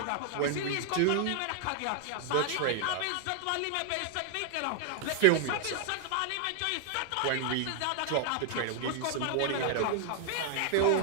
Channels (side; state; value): both; different; correlation 0.00